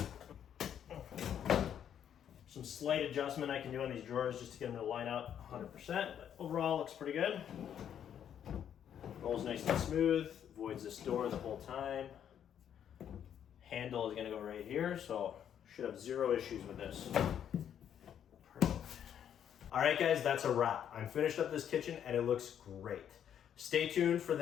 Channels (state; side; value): quieter; right; 9.3 dB